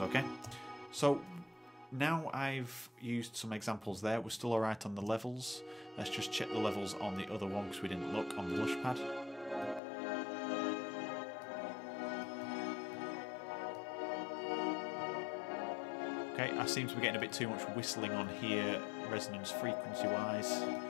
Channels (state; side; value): drops out; right; at 9.8 s